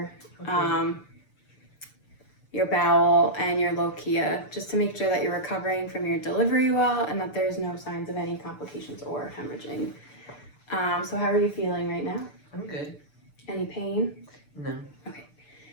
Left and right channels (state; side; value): late; right; 6.7 ms